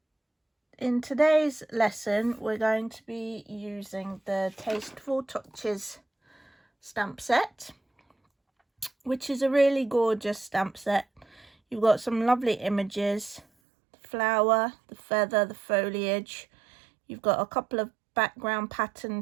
in today's lesson, we're going to be using the Tasteful Touches Stamp Set, which is a really gorgeous stamp set. You've got some lovely images, the flower, the feather, the foliage. You've got a couple of background pattern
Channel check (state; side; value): drops out; left; at 13.5 s